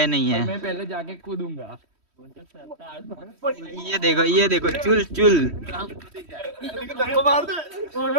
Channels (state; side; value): late; left; 3.1 ms